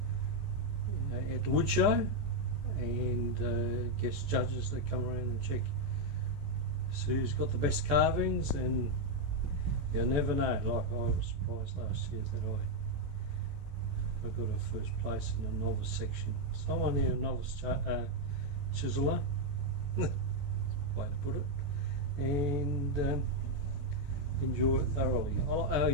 at the wood show, and guest judges that come around and check so who's got the best carvings, and you never know. Like, I was surprised last year that I got a first place in the novice section. So I'm only a novice chiseler, way to put it, and enjoy it thoroughly. I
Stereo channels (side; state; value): left; late; 14 ms